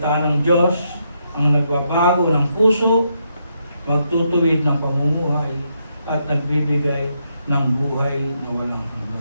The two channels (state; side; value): inverted; both; correlation -0.79